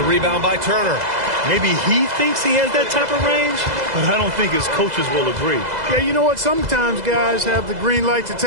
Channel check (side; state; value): left; late; 2.0 ms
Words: rebound by Turner. Maybe he thinks he has that type of range, but I don't think his coaches will agree. Yeah, you know what? Sometimes guys have the green light to